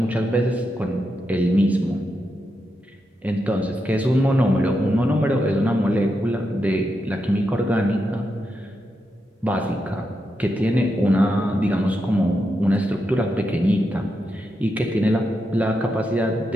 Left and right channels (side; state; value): both; normal; correlation 0.85